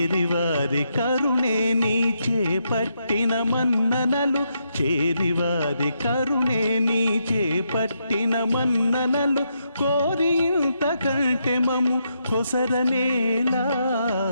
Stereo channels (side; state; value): both; inverted; correlation -0.80